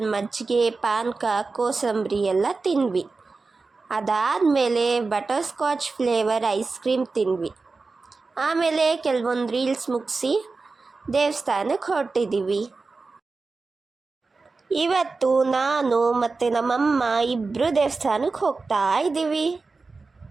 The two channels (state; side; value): quieter; left; 4.0 dB